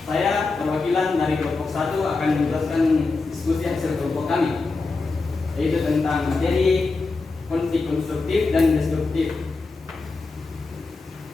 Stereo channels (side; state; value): right; quieter; 3.8 dB